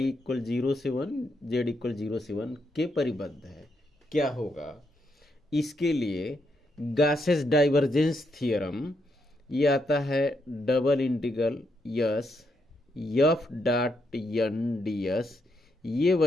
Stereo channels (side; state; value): both; normal; correlation 0.79